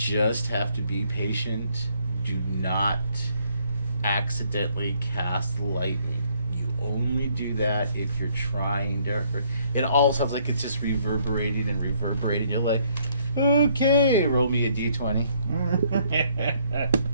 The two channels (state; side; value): inverted; both; correlation -0.67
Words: have to be patient. Do not accidentally cast lightning. You only do that if you're trying to hurt. It all sounds like it's just reverberating and reverberating. You're like, okay, roll me a d20.